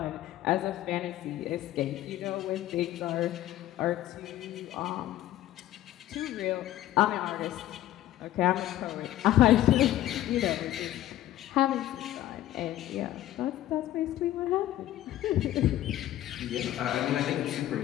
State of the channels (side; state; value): right; quieter; 13.9 dB